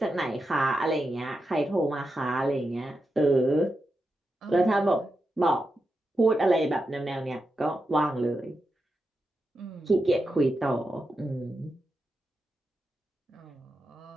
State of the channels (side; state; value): both; normal; correlation 0.88